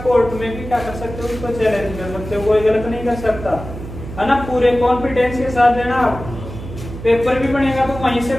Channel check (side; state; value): right; noise; hum, 11 dB below the sound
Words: कोर्ट में भी क्या कर सकते हो, उसको चैलेंज कर सकते हो, कोई गलत नहीं कर सकता, है ना। पूरे कॉन्फिडेंस के साथ देना। आप पेपर भी बनेगा तो वहीं से